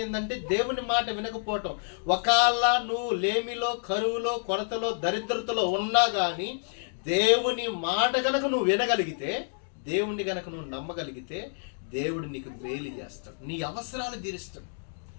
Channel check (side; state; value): right; silent; digital silence